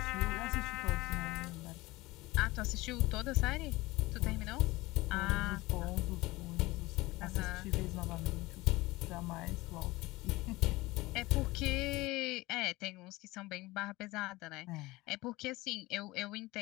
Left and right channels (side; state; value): right; quieter; 20.5 dB